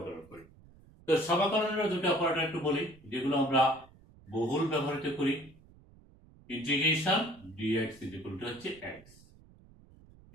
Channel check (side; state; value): right; noise; rumble, 25 dB below the sound